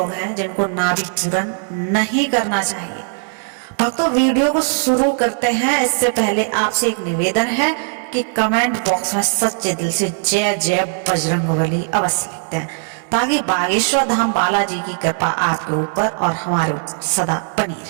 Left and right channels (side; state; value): left; silent; 61 dB below the other